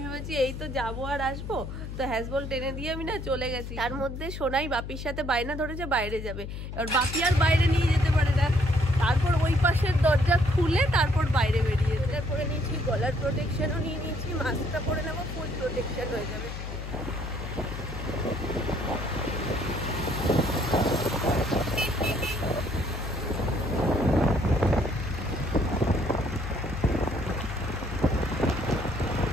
ভেবেছি এই তো যাবো আর আসবো, তো হ্যাজবল টেনে দিয়ে আমি না চলে গেছি। তার মধ্যে সোনাই বাপির সাথে বায়না ধরেছে বাইরে যাবে, এবার বাপি আর বাইরে নিয়ে যেতে পারে না। তারপর ওই পাশের দরজা খুলে তারপর বাইরে বেরিয়ে এটা করে নিয়েছি, গলার প্রোটেকশনও নিয়ে নিয়েছি, মাস্কটা পরে নেবো, ফুল প্রোটেকশন হয়ে যাবে।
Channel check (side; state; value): left; noise; hum, 8 dB below the sound